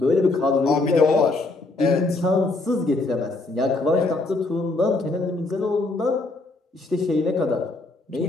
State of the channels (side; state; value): right; quieter; 3.2 dB